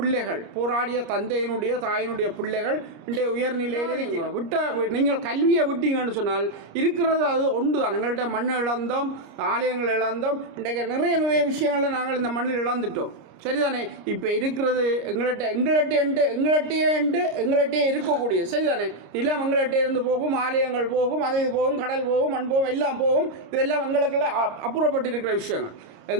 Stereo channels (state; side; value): late; left; 26 ms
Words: போராடிய தந்தையினுடைய தாயினுடைய பிள்ளைகள் இன்றைய உயர்நிலையில் நீங்கள் கல்வியை விட்டீங்கன்னு சொன்னால் இருக்கிறது அது ஒன்று தான். எங்கள்கிட்ட மண் இழந்தோம், ஆலயங்கள் இழந்தோம், இன்றைக்கு நிறைய விஷயங்களை நாங்கள் இந்த மண்ணில் இழந்துட்டோம். சரிதானே? இப்போ இருக்கிறது எங்கள்கிட்டே இருக்கக்கூடிய, சரிதானே, நிலம் எங்கள்கிட்ட இருந்து போகும், ஆலயங்கள் போகும், அது போகும், கடல் போகும், மண் போகும், எல்லாம் போகும். இதெல்லாம் எங்களுக்கெல்லாம் அப்புறப்பட்டு இருக்கிற விஷயங்கள்.